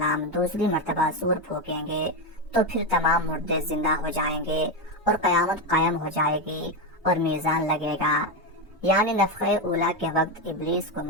دوسری مرتبہ سور پھونکیں گے تو پھر تمام مردے زندہ ہو جائیں گے اور قیامت قائم ہو جائے گی اور میزان لگے گا، یعنی نفخ اولا کے وقت ابلیس کو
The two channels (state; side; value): normal; both; correlation 0.11